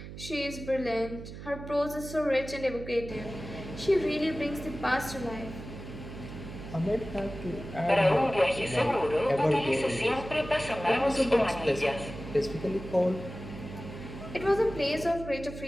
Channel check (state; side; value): noise; right; hum, 11 dB below the sound